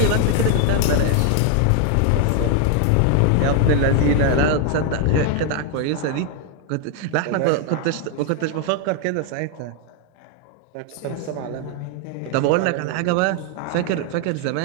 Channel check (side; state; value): both; different; correlation 0.01